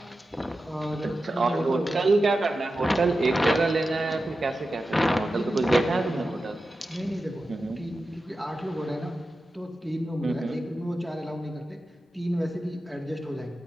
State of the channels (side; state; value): both; normal; correlation 0.92